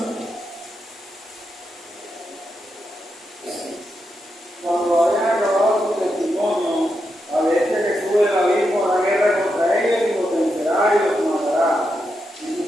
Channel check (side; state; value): both; normal; correlation 0.85